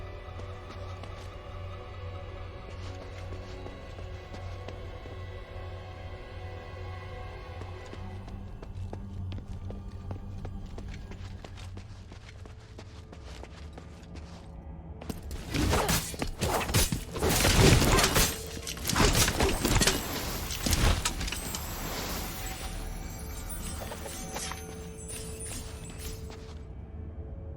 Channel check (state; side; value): identical; both; correlation 1.00